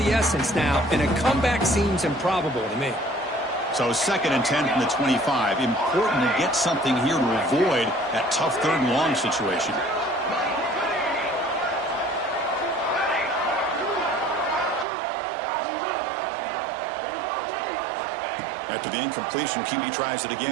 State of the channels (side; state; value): left; drops out; at 14.9 s